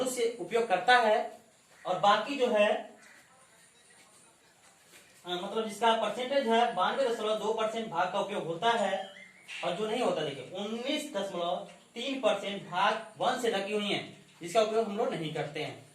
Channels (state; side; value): identical; both; correlation 1.00